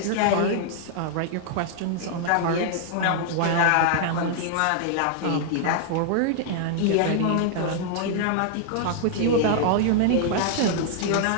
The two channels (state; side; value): different; both; correlation -0.01